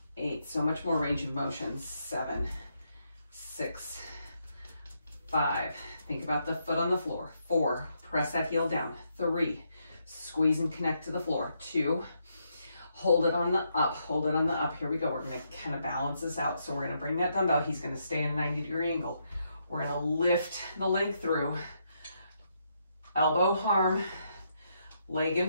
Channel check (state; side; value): inverted; both; correlation -0.78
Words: 8. So much more range of motion. 7, 6, 5. Think about the foot on the floor. 4, press that heel down. 3, squeeze and connect to the floor. 2, hold it on the up, hold it on the up. Here we go. We're gonna kind of balance this out. So we're gonna bring that dumbbell. He's gonna stay in a 90-degree angle. We're gonna lift the leg through. Elbow, arm, leg in